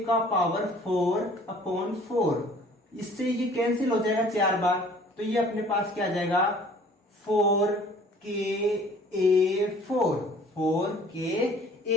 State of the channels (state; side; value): normal; both; correlation 0.52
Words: का पावर 4 अपॉन 4, इससे ये कैंसिल हो जाएगा 4 बार, तो ये अपने पास क्या आ जाएगा 4ka4,